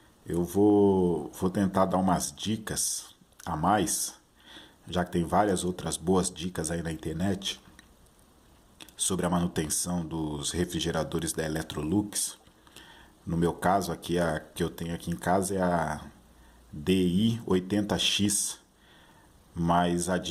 Eu vou tentar dar umas dicas a mais, já que tem várias outras boas dicas aí na internet sobre a manutenção dos refrigeradores da Electrolux. No meu caso, aqui a que eu tenho aqui em casa é a DI80X, mas a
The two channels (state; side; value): identical; both; correlation 1.00